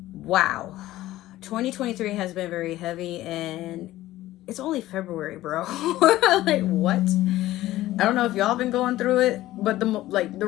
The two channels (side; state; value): right; quieter; 15.6 dB